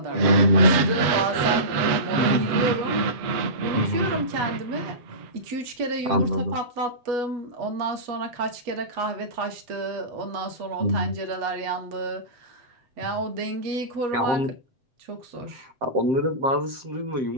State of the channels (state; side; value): late; left; 7.6 ms